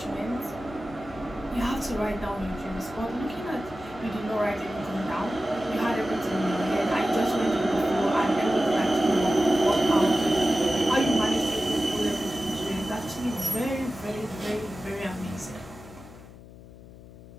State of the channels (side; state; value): left; noise; hum, 18 dB below the sound